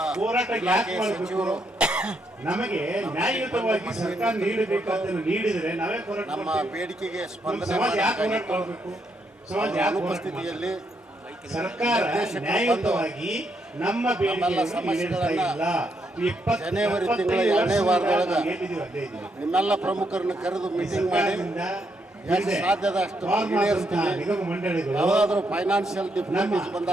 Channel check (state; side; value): normal; both; correlation 0.77